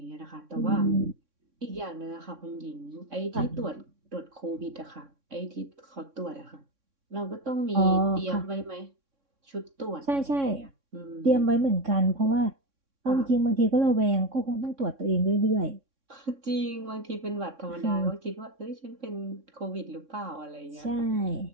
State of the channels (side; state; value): left; late; 3.6 ms